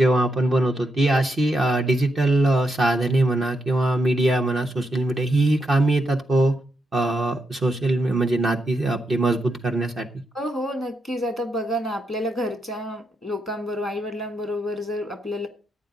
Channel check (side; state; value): both; normal; correlation 0.82